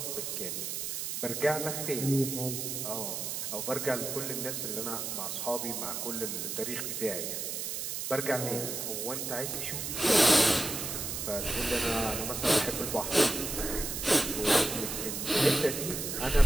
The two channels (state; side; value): noise; right; hiss, 4 dB below the sound